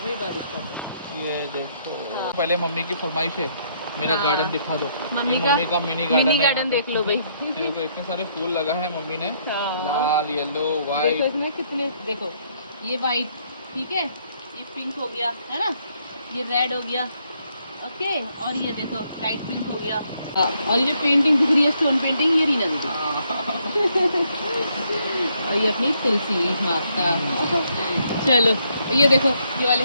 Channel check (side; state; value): both; inverted; correlation -0.71